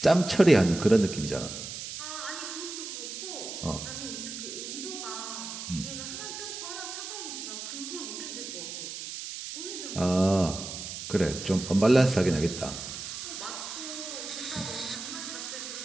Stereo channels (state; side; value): noise; right; hiss, 8 dB below the sound